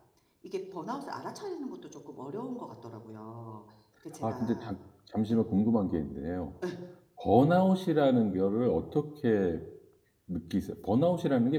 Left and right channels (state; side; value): identical; both; correlation 1.00